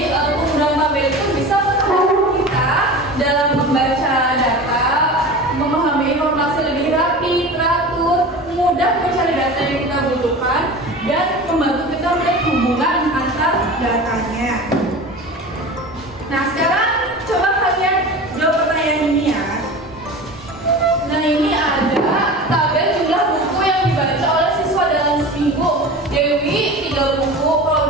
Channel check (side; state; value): both; normal; correlation 0.33